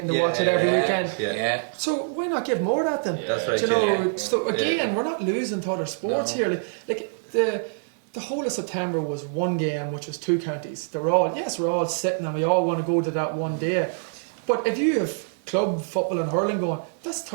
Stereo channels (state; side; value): silent; left; digital silence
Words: to watch it every weekend. So why not give more of that then? That's right. Do you know, so again, we're not losing to other sports here. Like the whole of September was one game, which was two counties. We're all sitting and we all want to go to that one day. But if you have club football and hurling going, that's